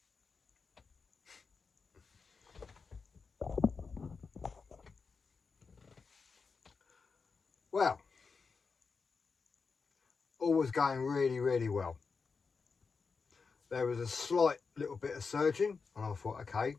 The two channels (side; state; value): right; quieter; 5.0 dB